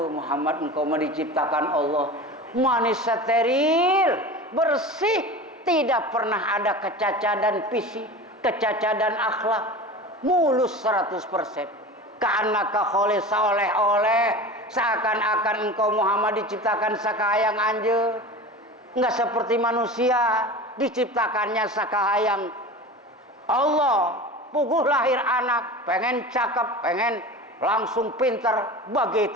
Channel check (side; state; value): both; normal; correlation 0.33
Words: Muhammad, engkau diciptakan Allah manis, steril, bersih, tidak pernah ada kecacadan fisik, kecacadan akhlak, mulus 100%. Ka'annaka khuliq seoleh-oleh, seakan-akan engkau Muhammad diciptakan sakahayang anjeun. Enggak seperti manusia diciptakannya sakahayang Allah. Puguh lahir anak, pengen cakep, pengen langsung pinter,